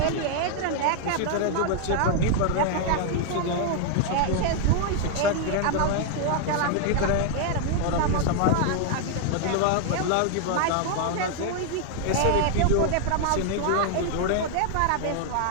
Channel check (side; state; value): both; different; correlation 0.00